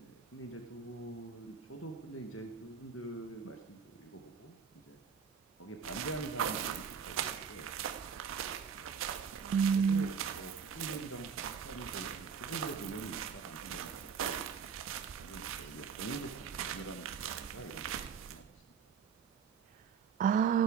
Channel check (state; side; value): quieter; left; 6.6 dB